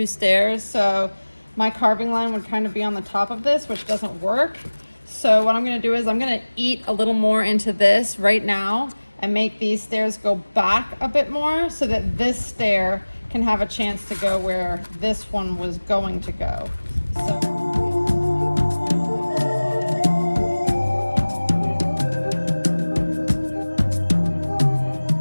stairs, so my carving line would kind of be on the top of this, which doesn't work. So what I'm gonna do is I'm gonna eat a little more into this right now and make these stairs go back a bit more so that this stair can have a chance to go where this one was going to go.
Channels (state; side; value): inverted; both; correlation -1.00